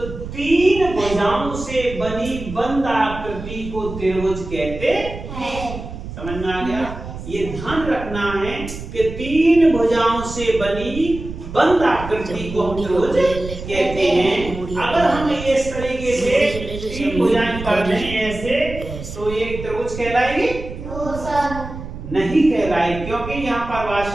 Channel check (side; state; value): right; noise; rumble, 10 dB below the sound